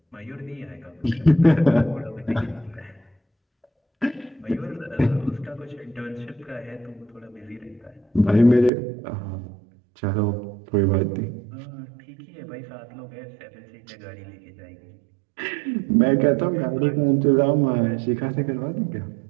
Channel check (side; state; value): left; drops out; at 8.7 s